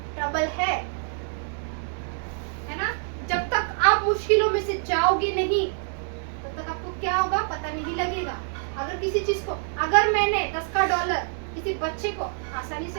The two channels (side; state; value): left; silent; 61 dB below the other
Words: ट्रबल है ना? जब तक आप मुश्किलों में से जाओगे नहीं, तब तक आपको क्या होगा पता नहीं लगेगा। अगर किसी चीज को, अगर मैंने 10 का डॉलर किसी बच्चे को आसानी